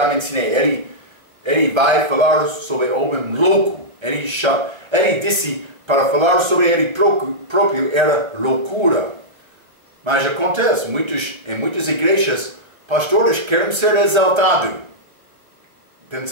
mencionei, ele vai falar sobre homem louco. Ele disse para falar sobre ele próprio era loucura. Mas acontece, em muitas igrejas, pastores querem ser exaltados,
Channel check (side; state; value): left; late; 1.3 ms